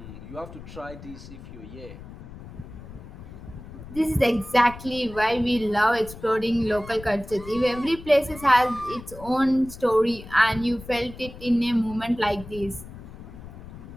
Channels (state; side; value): noise; left; rumble, 15 dB below the sound